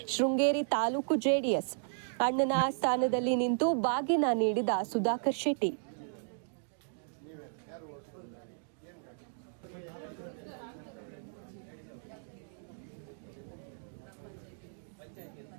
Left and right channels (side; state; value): left; silent; digital silence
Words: ಶೃಂಗೇರಿ ತಾಲೂಕು ಜೆಡಿಎಸ್ ಅಣ್ಣನ ಸ್ಥಾನದಲ್ಲಿ ನಿಂತು ಬಾಗಿನ ನೀಡಿದ ಸುಧಾಕರ್ ಶೆಟ್ಟಿ.